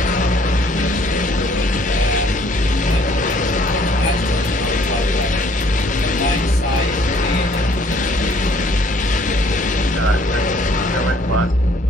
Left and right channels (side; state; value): both; normal; correlation 0.61